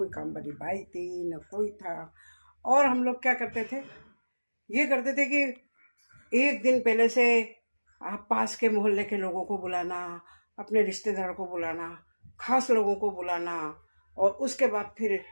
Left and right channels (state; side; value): inverted; both; correlation -1.00